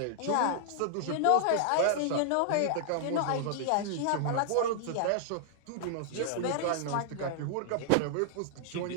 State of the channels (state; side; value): different; both; correlation -0.01